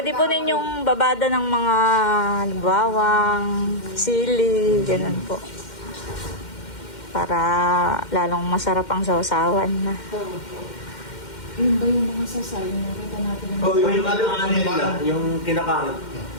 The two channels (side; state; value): right; late; 2.1 ms